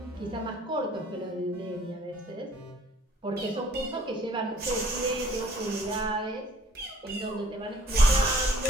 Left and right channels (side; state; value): both; normal; correlation 0.57